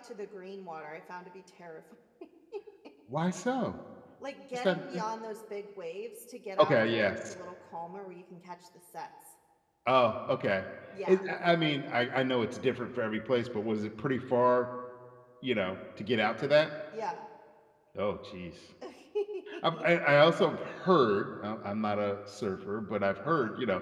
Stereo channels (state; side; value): identical; both; correlation 1.00